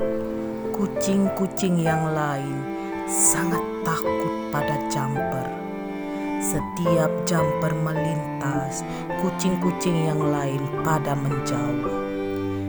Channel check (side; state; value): both; identical; correlation 1.00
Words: Kucing-kucing yang lain sangat takut pada Jumper. Setiap Jumper melintas, kucing-kucing yang lain pada menjauh.